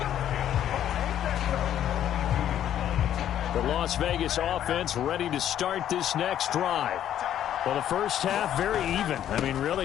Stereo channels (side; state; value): right; quieter; 10.8 dB